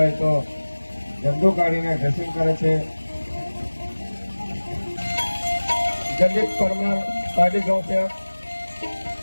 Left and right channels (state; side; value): inverted; both; correlation -1.00